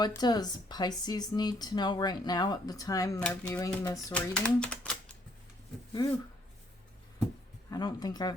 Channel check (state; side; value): normal; both; correlation 0.66